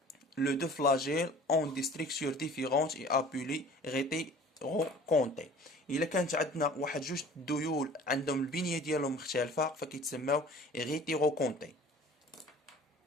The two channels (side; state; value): both; normal; correlation 0.46